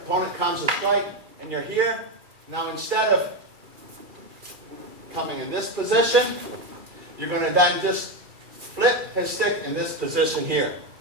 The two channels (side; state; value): left; late; 2.4 ms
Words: comes to strike, and you're here, now instead of coming in this position, you're going to then just flip his stick in this position here.